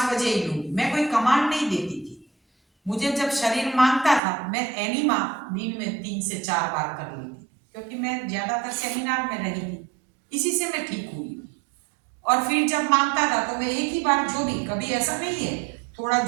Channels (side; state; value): left; drops out; at 4.2 s